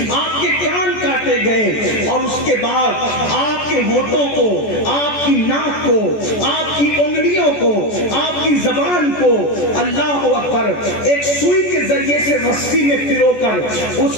آپ کے کان کاٹے گئے، اور اس کے بعد آپ کے ہونٹوں کو، آپ کی ناک کو، آپ کی انگلیوں کو، آپ کی زبان کو اللہ اکبر ایک سوئی کے ذریعے سے رسی میں پرو کر اس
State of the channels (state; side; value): late; right; 14 ms